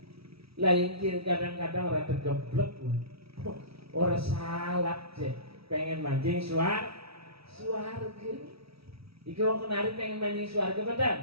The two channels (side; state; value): left; late; 0.77 ms